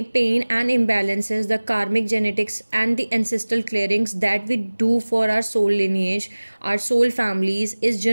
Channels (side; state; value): both; inverted; correlation -1.00